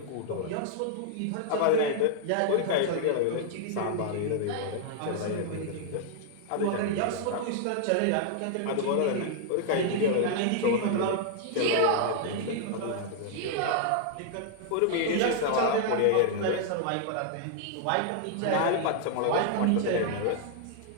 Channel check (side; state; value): both; different; correlation -0.01